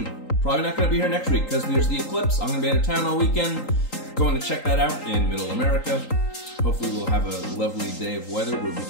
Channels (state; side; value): late; right; 3.8 ms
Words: Probably not going to be here next week because there's the eclipse. I'm going to be out of town all weekend. Going to check that out in Middle America. Hopefully we'll have a lovely day of weather where we